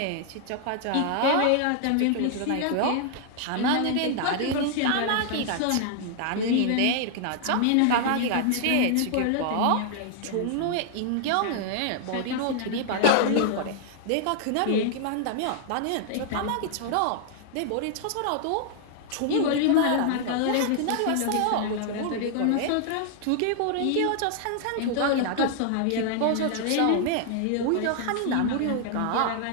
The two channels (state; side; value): different; both; correlation 0.00